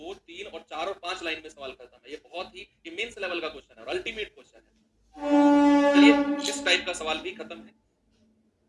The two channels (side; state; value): both; identical; correlation 1.00